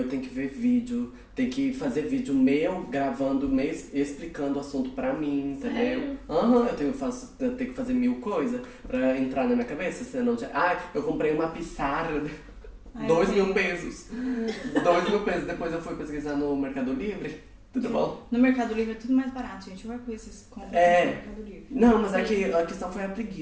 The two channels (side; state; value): both; identical; correlation 1.00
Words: tenho que ver vídeo, tenho que fazer vídeo meu, gravando, explicando o assunto pra mim, entendeu? Eu tenho que fazer 1000 coisas pra entrar na minha cabeça, senão eu comprei uma pissarra... 2.000 pesos. 2.000 pesos. Depois eu fui pesquisar no Mercado Livre. Tudo bom? No Mercado Livre é tudo mais barato, gente. Vai com esses compras no Mercado Livre. Não, mas aqui a questão foi a